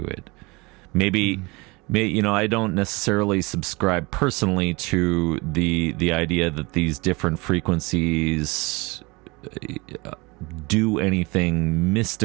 it. Maybe I don't necessarily subscribe personally to the idea that these different frequencies do anything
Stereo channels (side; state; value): left; quieter; 25.3 dB